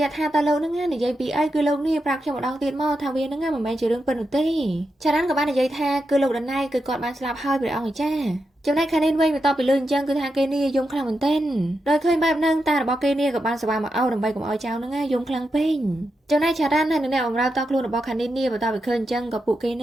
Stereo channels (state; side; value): normal; both; correlation 0.87